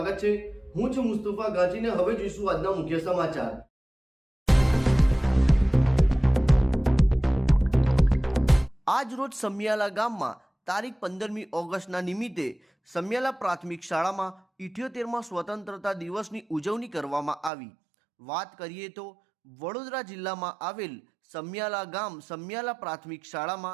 છે। હું છું મુસ્તફા ગાજીને। હવે જોઈશું આજના મુખ્ય સમાચાર। આજ રોજ સમિયાલા ગામમાં તારીખ 15મી ઓગસ્ટના નિમિત્તે સમિયાલા પ્રાથમિક શાળામાં 78મા સ્વતંત્રતા દિવસની ઉજવણી કરવામાં આવી। વાત કરીએ તો વડોદરા જિલ્લામાં આવેલ સમિયાલા ગામ સમિયાલા પ્રાથમિક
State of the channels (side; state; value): left; drops out; at 17.5 s